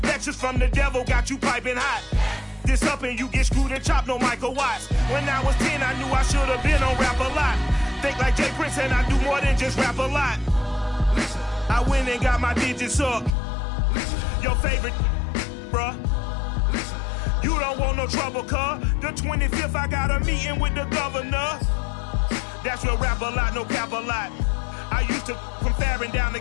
Lectures from the devil got you piping hot. This up and you get screwed and chopped, no Michael Watts. When I was 10, I knew I should have been on rap a lot. Think like Jay Prince and I do more than just rap a lot. I went and got my digits up. Your favorite, bruh. You don't want no trouble, cuz. The 25th, I got a meeting with the governor. That's real rap a lot, no cap a lot. I used to from Farron down to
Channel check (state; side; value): drops out; right; at 13.4 s